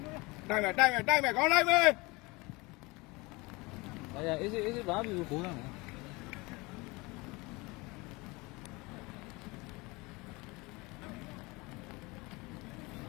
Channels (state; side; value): quieter; right; 24.5 dB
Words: တိုက်မယ်ကောင်းလိုက်မယ်အေးစေးဘာပြီကိုရမယ်